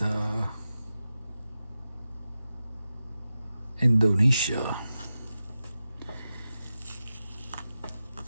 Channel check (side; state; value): both; inverted; correlation -0.92